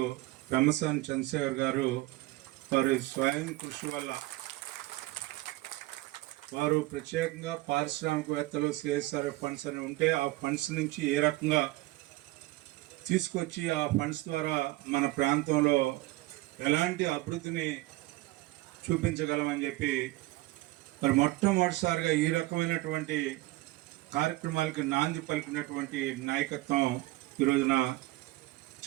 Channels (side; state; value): left; quieter; 19.2 dB